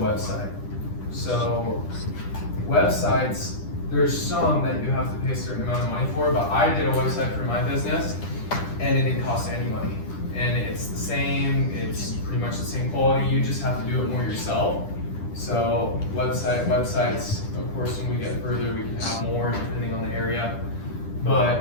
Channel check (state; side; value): late; right; 10 ms